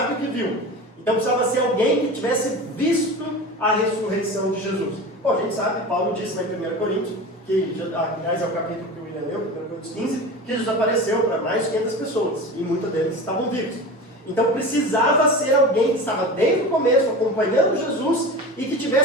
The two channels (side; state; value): both; normal; correlation 0.31